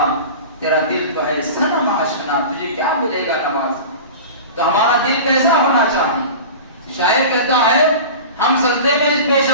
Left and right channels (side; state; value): both; inverted; correlation -0.33